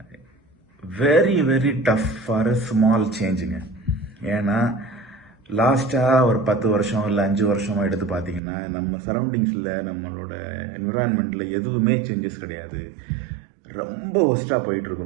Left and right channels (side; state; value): left; drops out; at 8.4 s